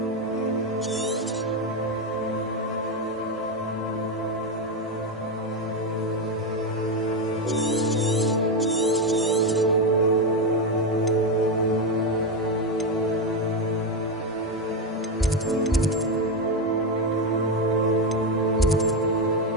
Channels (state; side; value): normal; both; correlation 0.10